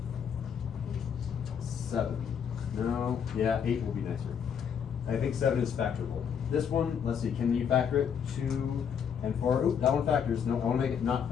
7. No, yeah, 8 will be nicer. I think 7 is factorable. This one, let's see, can you factor it? 2 and 4. Oop, that one factors. No, I want to make it not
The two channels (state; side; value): quieter; right; 7.6 dB